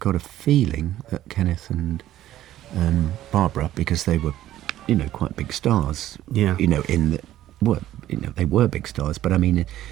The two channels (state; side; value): quieter; left; 13.3 dB